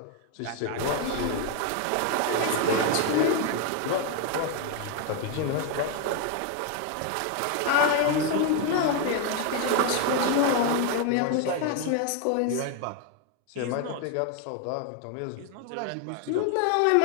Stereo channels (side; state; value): both; different; correlation 0.01